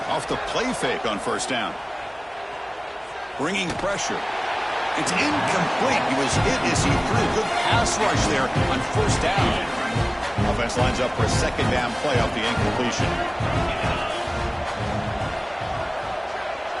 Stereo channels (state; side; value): identical; both; correlation 1.00